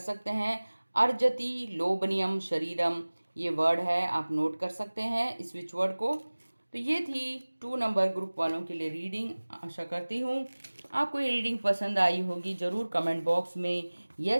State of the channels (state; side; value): inverted; both; correlation -1.00